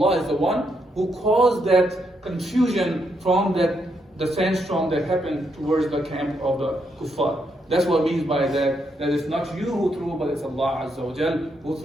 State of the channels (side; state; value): both; normal; correlation 0.78